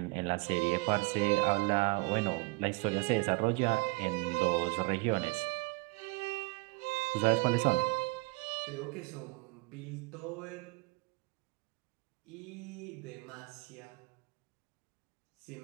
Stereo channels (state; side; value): quieter; left; 25.8 dB